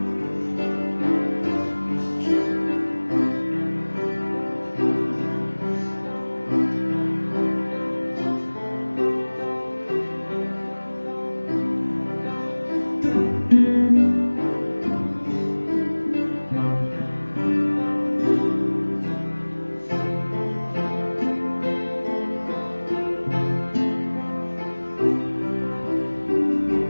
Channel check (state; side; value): inverted; both; correlation -1.00